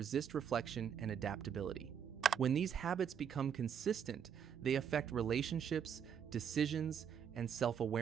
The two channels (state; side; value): quieter; left; 8.1 dB